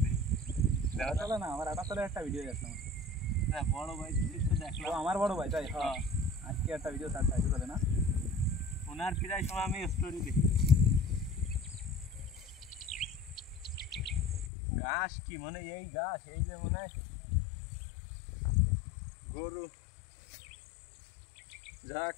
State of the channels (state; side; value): drops out; right; at 14.5 s